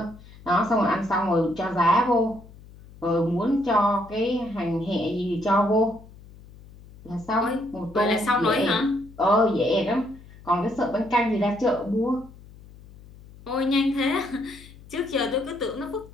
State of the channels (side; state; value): left; noise; hum, 21 dB below the sound